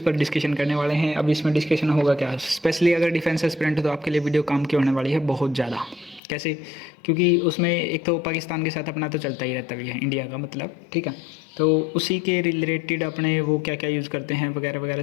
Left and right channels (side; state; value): right; drops out; at 6.2 s